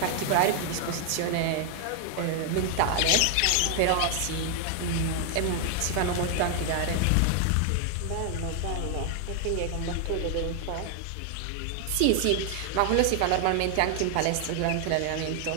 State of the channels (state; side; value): different; both; correlation 0.00